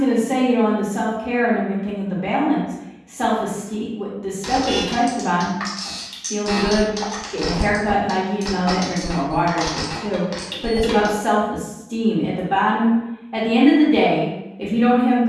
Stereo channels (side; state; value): both; identical; correlation 1.00